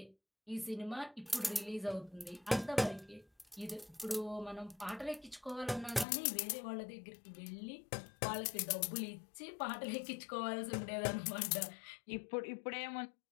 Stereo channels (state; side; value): drops out; right; at 6.1 s